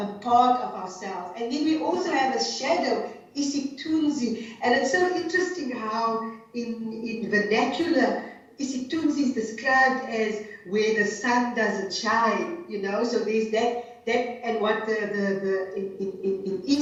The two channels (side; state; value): both; identical; correlation 1.00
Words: part of ourselves. And then we also have a shadow, isitunzi. And it's so interesting how in vernacular, isitunzi is described as where the sun doesn't shine, you know, so there's that and what in